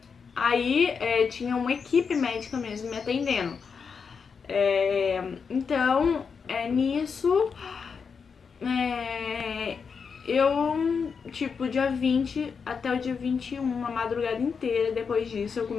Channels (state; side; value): quieter; right; 5.8 dB